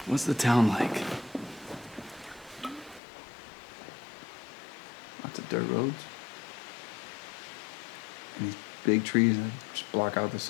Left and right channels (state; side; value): drops out; right; at 3.0 s